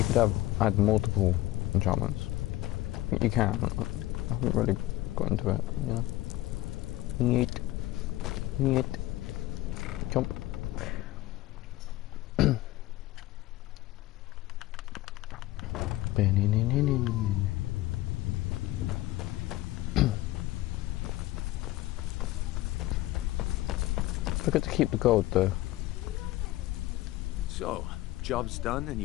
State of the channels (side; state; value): right; quieter; 16.8 dB